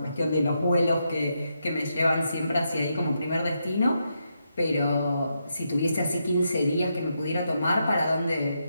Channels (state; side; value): inverted; both; correlation -0.82